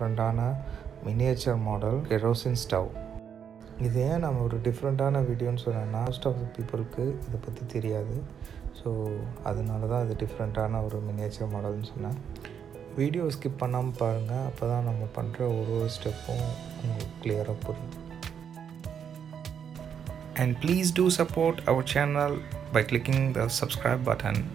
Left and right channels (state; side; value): quieter; left; 7.9 dB